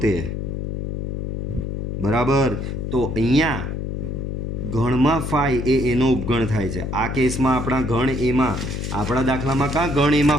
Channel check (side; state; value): left; noise; hum, 4 dB below the sound